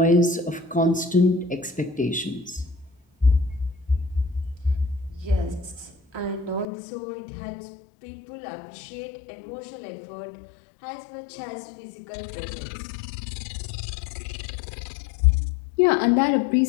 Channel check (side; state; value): right; drops out; at 6.7 s